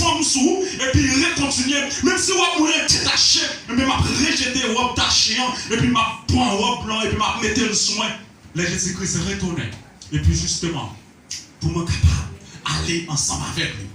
sous vous, et puis recontinuer. Même si on m'a détaché, mais m'a rejeté robe tachée, et puis m'a pris un robe blanc, et puis m'a mis le soin. Là, Jésus-Christ est retourné. Et puis justement, pour me capable aller ensemble avec lui.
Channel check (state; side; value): identical; both; correlation 1.00